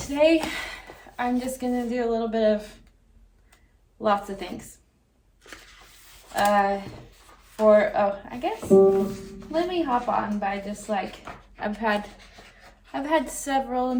today I'm just gonna do a little bit of lots of things. I guess let me hop on by just like I've had several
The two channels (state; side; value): identical; both; correlation 1.00